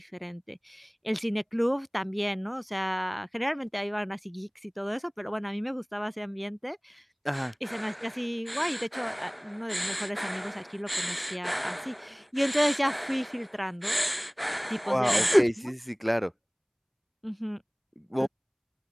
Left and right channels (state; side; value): identical; both; correlation 1.00